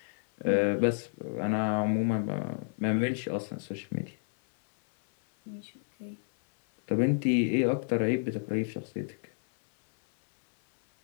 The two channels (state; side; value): silent; right; 58 dB below the other